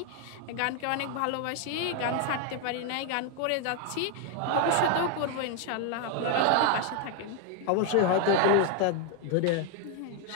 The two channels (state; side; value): different; both; correlation 0.01